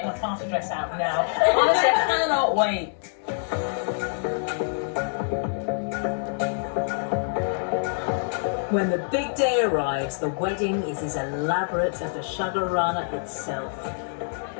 my party dress out now. Honestly, I cannot wait. When the big day arrives, the wedding is as elaborate as the Shagarana itself.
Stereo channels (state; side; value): silent; right; digital silence